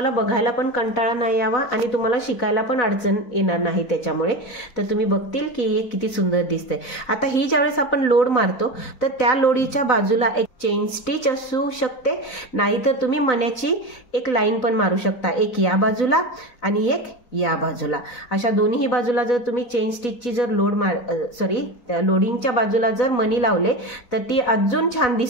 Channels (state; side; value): late; right; 4.0 ms